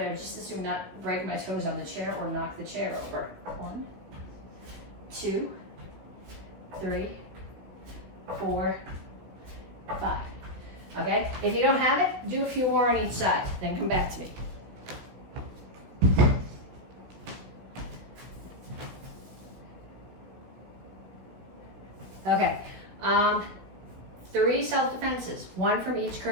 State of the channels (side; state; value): left; late; 16 ms